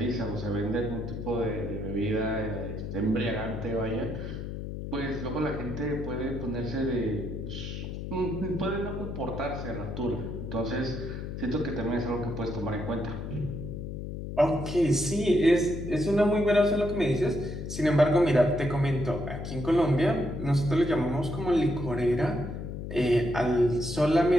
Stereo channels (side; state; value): left; noise; hum, 7 dB below the sound